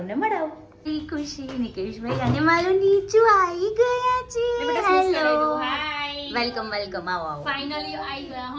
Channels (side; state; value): both; identical; correlation 1.00